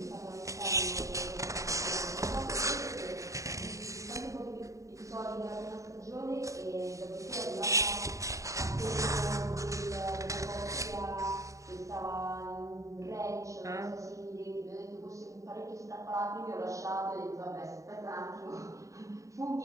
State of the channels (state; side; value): late; left; 0.16 ms